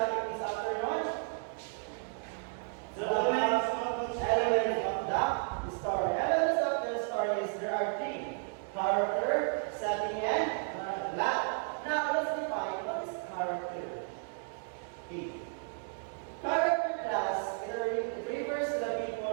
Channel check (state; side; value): silent; left; 56 dB below the other